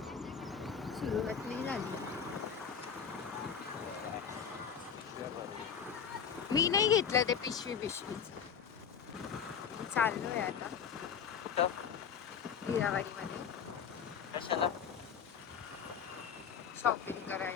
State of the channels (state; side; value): quieter; right; 7.3 dB